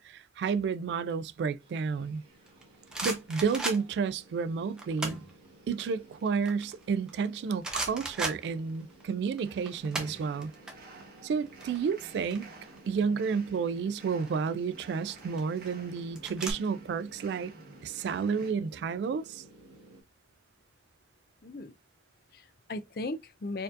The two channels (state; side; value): quieter; left; 4.9 dB